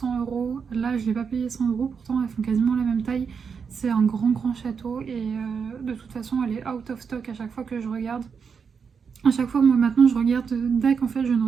€. Là, je ne l'ai pas payé 100 €, pourtant elles font quasiment la même taille. C'est un grand château et de toute façon, elle est out of stock à chaque fois que je regarde. À chaque fois, moi maintenant, je regarde DAC. En fait, je ne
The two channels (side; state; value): left; quieter; 6.1 dB